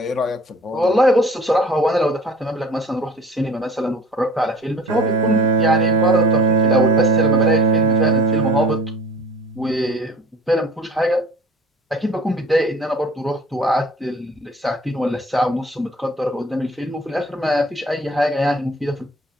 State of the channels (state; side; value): normal; both; correlation 0.48